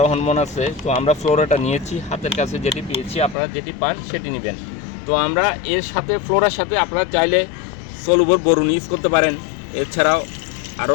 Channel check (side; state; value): right; drops out; at 3.4 s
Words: হরমোন আছে। তো আমরা ফ্লোরাটা নিয়েছি, হাতের কাছে যেটি পেয়েছি, আপনারা যেটি পান সেটি নেবেন। তো আমরা এর সাথে ফ্লোরার সাথে আপনারা চাইলে সলুবর বোরন ইউজ করতে পারেন, এছাড়াও